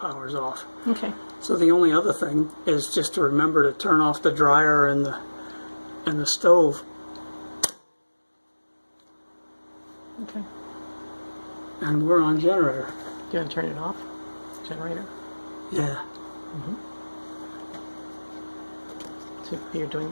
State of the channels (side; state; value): both; inverted; correlation -1.00